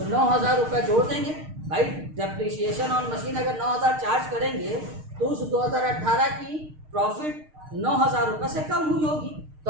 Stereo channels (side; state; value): left; late; 6.5 ms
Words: 9,000 रुपये जोड़ देंगे भाई। डेप्रिसिएशन ऑन मशीन अगर 9,000 चार्ज करेंगे तो उस 2018 की प्रॉफिट 9,000 रुपये से कम हुई होगी, तो